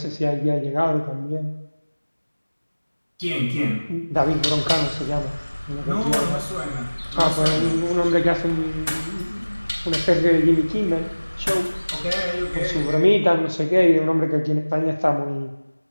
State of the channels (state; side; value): inverted; both; correlation -1.00